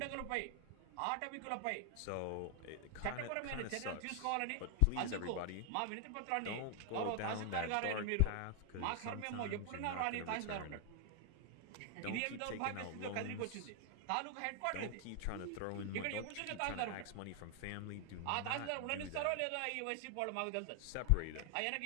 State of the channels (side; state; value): both; different; correlation 0.00